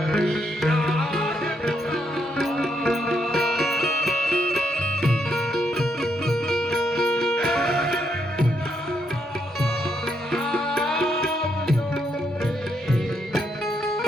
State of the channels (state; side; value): normal; both; correlation 0.77